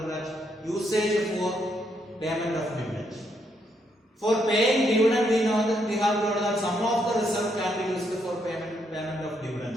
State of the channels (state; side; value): normal; both; correlation 0.76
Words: that usage for payment of dividend. For paying dividend, we know that we have told that some of the reserve can be used for payment of